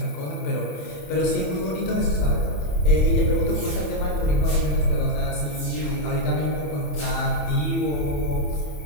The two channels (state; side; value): late; right; 27 ms